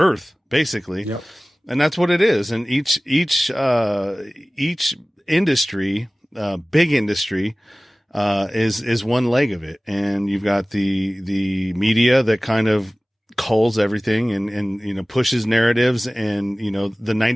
basically, and that's what it is. And each industry, big industry, is one leg of it, and you've got the media that kind of culls everything and pushes narratives, and the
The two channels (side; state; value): both; normal; correlation 0.98